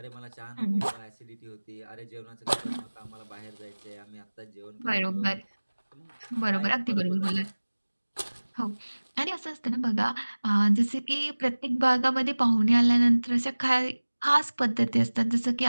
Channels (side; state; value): both; inverted; correlation -1.00